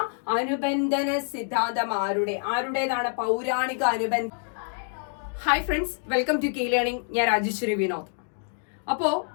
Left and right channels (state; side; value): silent; right; 60 dB below the other